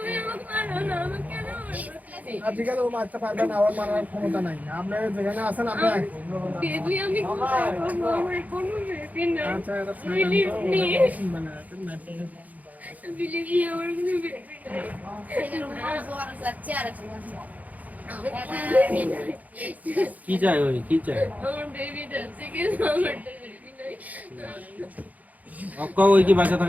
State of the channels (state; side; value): late; left; 0.077 ms